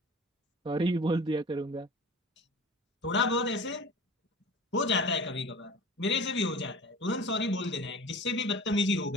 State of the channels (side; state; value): both; normal; correlation 0.39